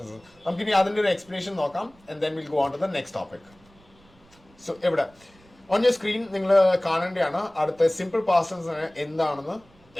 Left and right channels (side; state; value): right; noise; rumble, 29 dB below the sound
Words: നമുക്കിനി അതിന്റെ ഒരു എക്സ്പ്ലനേഷൻ നോക്കാം and then will go on to the next topic. So ഇവിടെ on your screen നിങ്ങൾ കാണേണ്ടതാണ് അടുത്ത സിമ്പിൾ പാസ്റ്റ് ടെൻസ് എന്താണെന്ന്